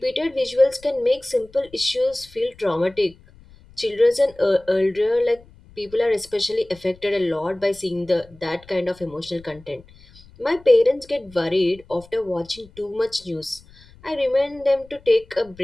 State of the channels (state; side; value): noise; left; rumble, 25 dB below the sound